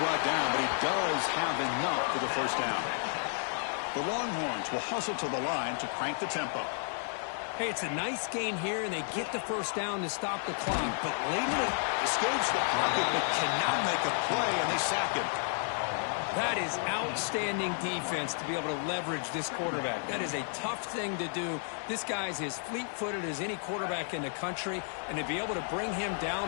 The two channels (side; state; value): right; silent; 56 dB below the other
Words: down, but he does have enough for the 1st down. The Longhorns will hustle to the line to crank the tempo. Hey, it's a nice gain here, and they get the 1st down to stop the clock. But later, escapes the pocket, but cannot make a play, and they sack him. that is outstanding defense to be able to leverage this quarterback. That is a tough thing to do. This guy's as fleet-footed as any quarterback in the country, and to be able to bring him